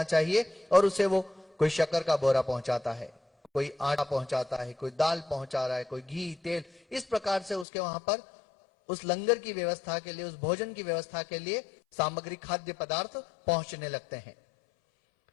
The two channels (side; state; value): right; drops out; at 7.7 s